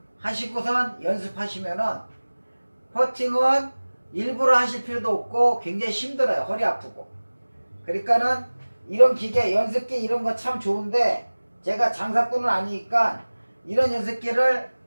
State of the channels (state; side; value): inverted; both; correlation -1.00